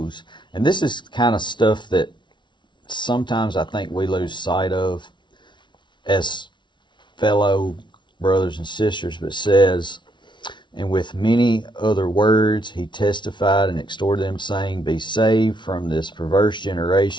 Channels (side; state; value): right; late; 0.23 ms